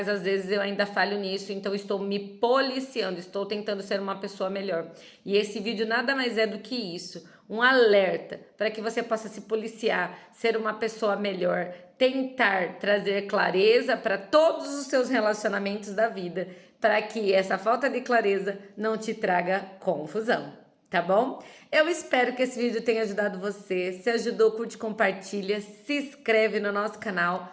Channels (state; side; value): identical; both; correlation 1.00